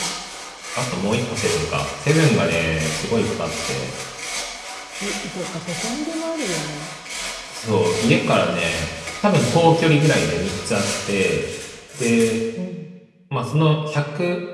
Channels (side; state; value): both; identical; correlation 1.00